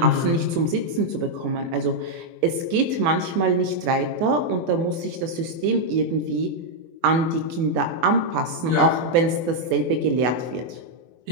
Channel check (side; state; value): left; late; 24 ms